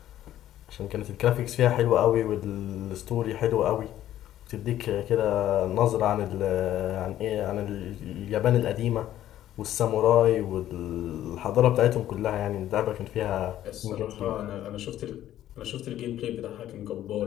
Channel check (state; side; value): quieter; right; 12.6 dB